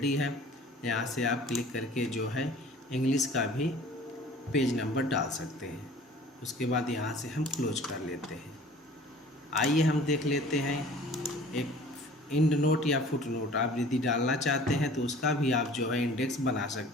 है। यहाँ से आप क्लिक करके जो है इंग्लिश का भी पेज नंबर डाल सकते हैं। उसके बाद यहाँ से हम क्लोज कर लेते हैं। आइए हम देख लेते हैं एक इंड नोट या फुट नोट आप यदि डालना चाहते हैं तो उसका भी आप जो है इंडेक्स बना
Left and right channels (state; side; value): normal; both; correlation 0.48